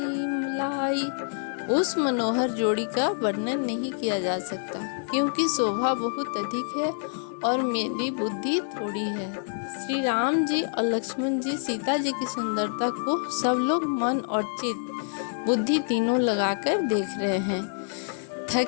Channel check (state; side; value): silent; right; digital silence